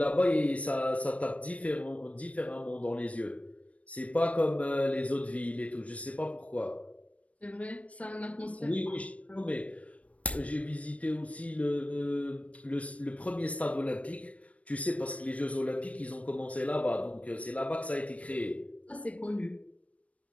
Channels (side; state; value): right; late; 0.065 ms